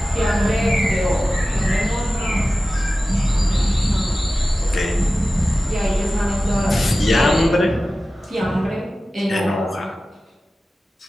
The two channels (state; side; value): normal; both; correlation 0.95